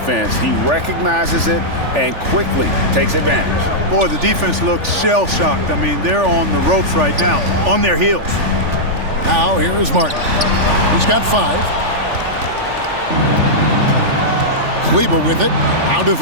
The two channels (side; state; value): left; late; 3.4 ms